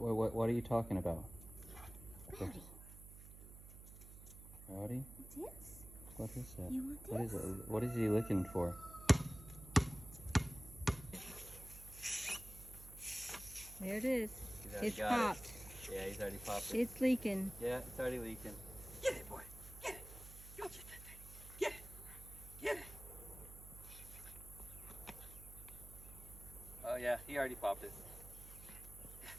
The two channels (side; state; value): right; noise; hum, 15 dB below the sound